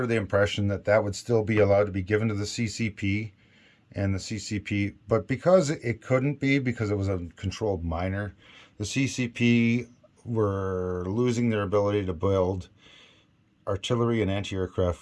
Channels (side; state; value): both; identical; correlation 1.00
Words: the impression that that would still be allowed to be given to the CCP and the CCP. But because it couldn't be, because it was a controlled minor, the CCP were losing their ability to build artillery and